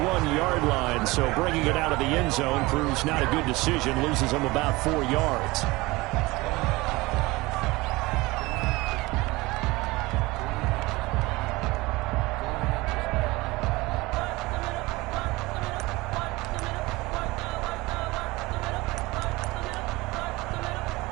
line, so bringing it out of the end zone proves not a good decision, loses him about 4 yards.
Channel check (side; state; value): left; quieter; 21.7 dB